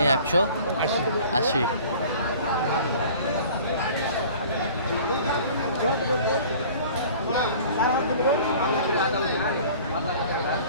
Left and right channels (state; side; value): inverted; both; correlation -0.46